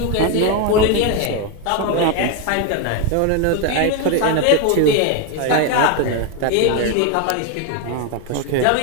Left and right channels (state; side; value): different; both; correlation 0.01